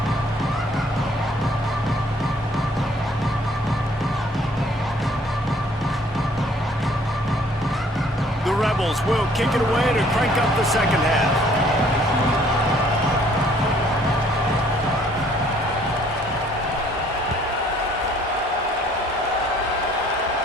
Rebels will kick it away to crank up the second half.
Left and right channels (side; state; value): both; normal; correlation 0.60